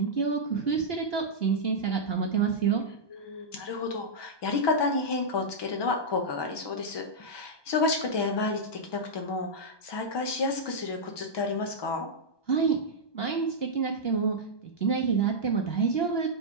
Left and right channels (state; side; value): late; right; 1.2 ms